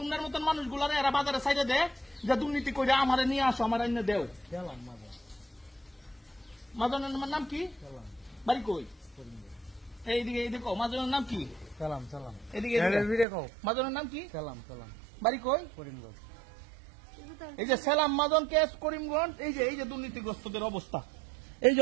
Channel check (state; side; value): drops out; left; at 13.2 s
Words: তোমার মতন মানুষগুলারে এরা বাজারে সাইডে দেয় যে দুর্নীতি করে আমারে নিয়ে আসো আমার এনে দেও মাজনের নাম কি বাড়ি কই এইদিকে দেখো মাজনের নাম কি সালাম এদিকে মাজনের নাম কি সালাম বাড়ি কই করিমগঞ্জ এই যে সালাম মাজন কেস করিমগঞ্জ এই যে দুর্নীতিগ্রস্তদের